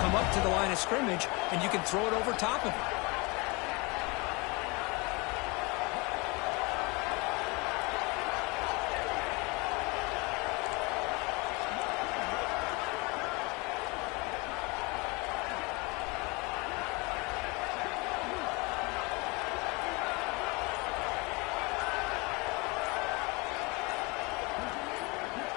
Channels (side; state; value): right; quieter; 27.3 dB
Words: up to the line of scrimmage, and you can throw it over top of it.